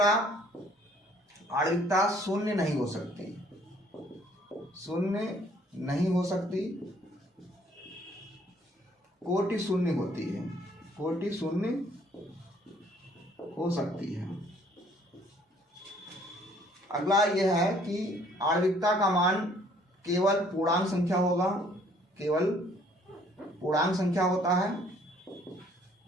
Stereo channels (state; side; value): normal; both; correlation 0.60